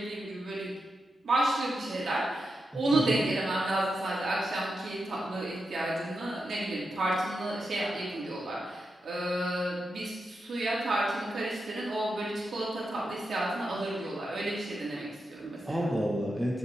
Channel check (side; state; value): both; normal; correlation 0.87